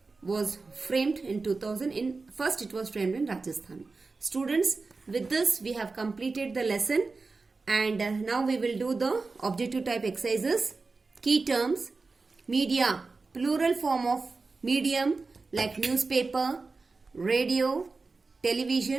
was framed in 2000. First it was framed in Rajasthan. Students, with this we have completed the lesson, and now we will do the objective type exercises. Key terms: media, plural form of medium like newspaper, radio,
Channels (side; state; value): left; quieter; 4.0 dB